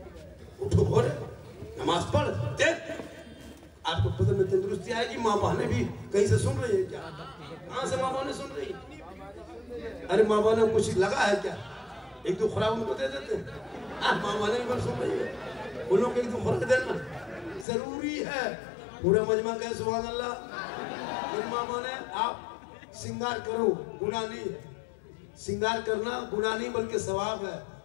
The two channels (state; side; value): drops out; right; at 17.7 s